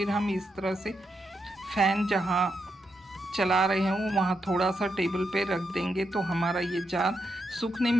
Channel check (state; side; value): normal; both; correlation 0.83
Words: हम इस तरह से फ़ैन जहाँ चला रहे हैं वहाँ थोड़ा सा टेबल पे रख देंगे तो हमारा ये जार सूखने